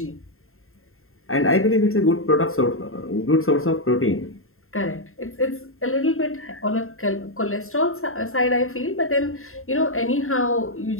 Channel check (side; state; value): right; late; 0.61 ms